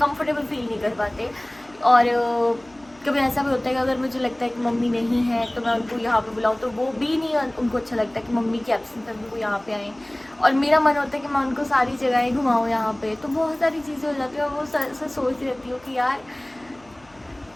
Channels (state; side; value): noise; left; hum, 29 dB below the sound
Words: फील नहीं कर पाते। और कभी ऐसा भी होता है कि अगर मुझे लगता है कि मम्मी नहीं है तो मैं उनको यहाँ पे बुलाऊँ, तो वो भी नहीं उनको अच्छा लगता कि मम्मी की एब्सेंस में वो यहाँ पे आएँ। और मेरा मन होता है कि मैं उनको सारी जगहें घुमाऊँ यहाँ पे, तो बहुत सारी चीज़ें हो जाती हैं। और वो सोचती रहती हूँ कि यार